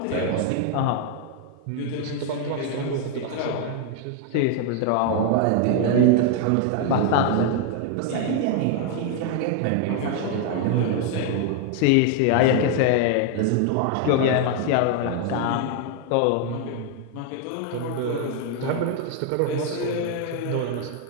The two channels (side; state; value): both; different; correlation 0.00